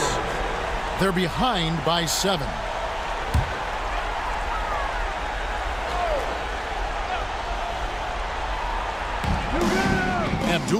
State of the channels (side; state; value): both; identical; correlation 1.00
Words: They're behind by 7.